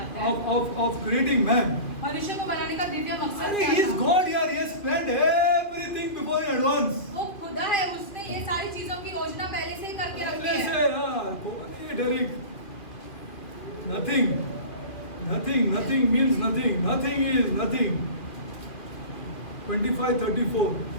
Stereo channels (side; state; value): right; late; 2.5 ms